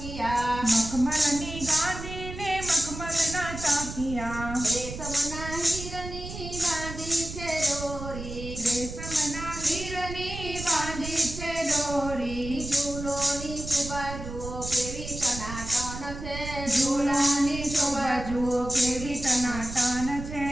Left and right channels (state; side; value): noise; right; rumble, 9 dB below the sound